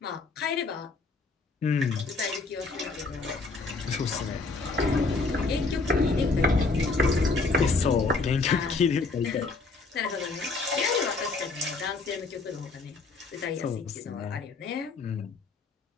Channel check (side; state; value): right; quieter; 3.9 dB